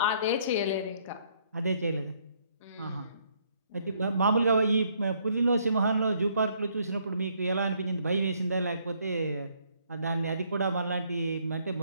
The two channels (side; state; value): both; inverted; correlation -0.68